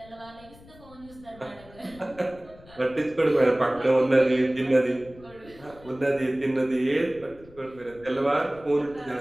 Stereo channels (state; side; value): noise; left; rumble, 22 dB below the sound